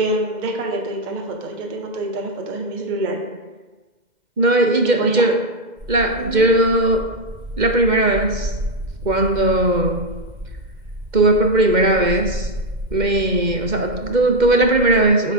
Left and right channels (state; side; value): late; left; 2.1 ms